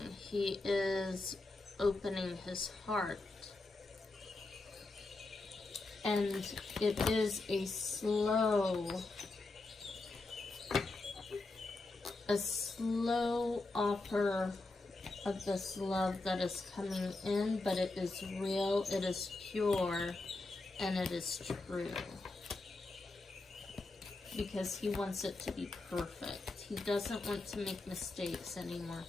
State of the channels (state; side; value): quieter; right; 3.2 dB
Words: He is opening his heart. And it is a slow offer of this love that is coming in, but it is real, it is pure, and it is true. Because he wants it to be perfect. He doesn't want to make mistakes anymore.